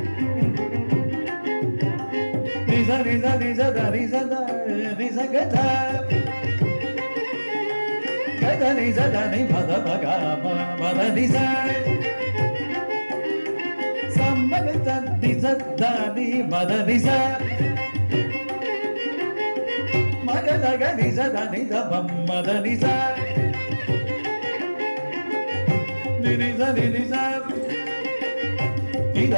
ನಿಜ ನಿಜ ನಿಜ ಧನಿ ಸ ಧನಿ ಸ ಗ ಧ ಗದ ನಿಜ ಧನಿ ಮದ ಮಗ ಮದ ನಿ ಸ ಸಮ ಗ ಧ ನಿಜ ಧನಿ ಮದ ನಿ ಸ ಮಗ ಗ ನಿಜ ಧನಿ ಧ ಮದ ನಿ ಸ ನಿ ನಿ ಸ ನಿ ನಿ ಸ ನಿ ಧ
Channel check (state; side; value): inverted; both; correlation -1.00